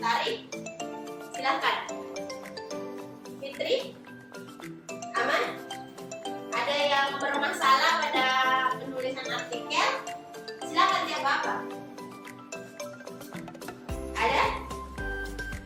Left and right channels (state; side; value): identical; both; correlation 1.00